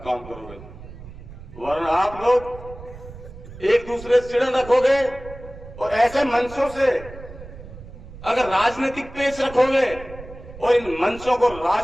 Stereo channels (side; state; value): right; noise; rumble, 15 dB below the sound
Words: काम करोगे? वरना आप लोग एक दूसरे से चिड़न रखोगे और ऐसे मंचों से अगर राजनीतिक पेश रखोगे और इन मंचों को